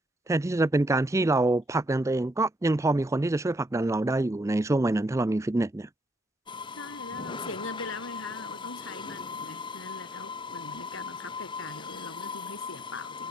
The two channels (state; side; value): normal; both; correlation 0.74